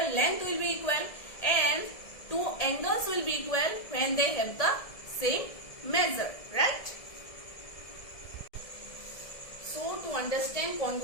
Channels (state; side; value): late; right; 1.7 ms